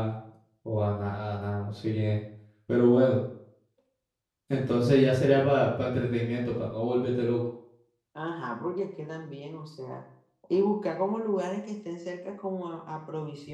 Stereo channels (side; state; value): both; identical; correlation 1.00